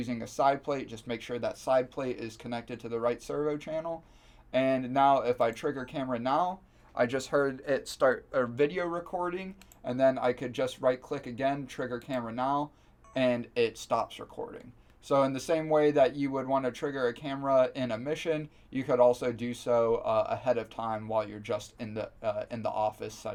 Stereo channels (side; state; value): both; identical; correlation 1.00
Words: a side plate, just make sure that side plate is connected to the right servo channel. And now if I trigger camera now, I just heard it start a video recording, and then I could just right click again, trigger camera now, and it stops recording. So in the same way that you would want to trigger a camera in a mission, you could also do so ahead of time while you're just in the office